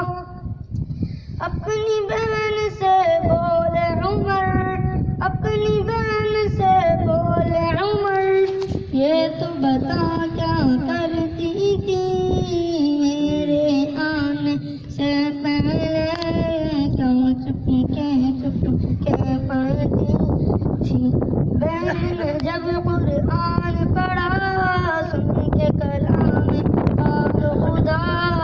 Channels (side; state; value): both; identical; correlation 1.00